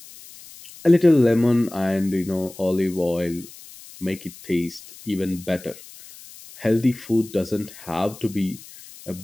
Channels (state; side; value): noise; left; hiss, 19 dB below the sound